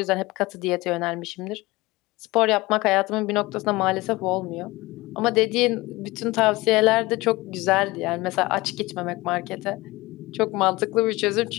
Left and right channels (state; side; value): quieter; right; 21.1 dB